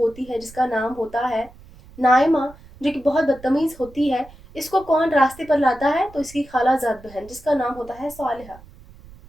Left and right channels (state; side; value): noise; right; rumble, 22 dB below the sound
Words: है जिसका नाम होता है नाइमा, जो कि बहुत बदतमीज होती है, इसको कौन रास्ते पर लाता है, तो इसकी खालाजाद बहन जिसका नाम होता है सालिहा।